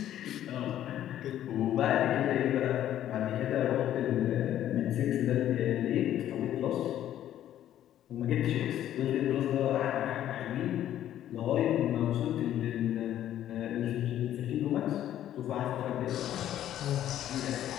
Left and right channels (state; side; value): quieter; right; 11.8 dB